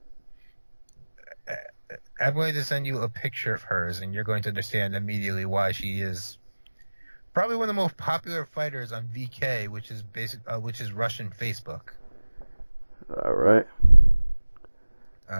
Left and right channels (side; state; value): both; inverted; correlation -1.00